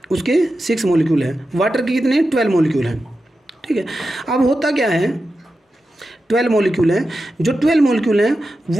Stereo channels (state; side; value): normal; both; correlation 0.91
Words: उसके 6 मॉलिक्यूल है, वाटर के कितने, 12 मॉलिक्यूल है, ठीक है। अब होता क्या है, 12 मॉलिक्यूल है, जो 12 मॉलिक्यूल हैं